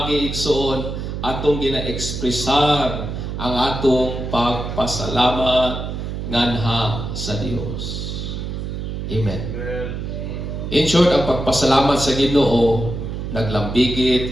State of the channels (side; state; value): right; noise; hum, 5 dB below the sound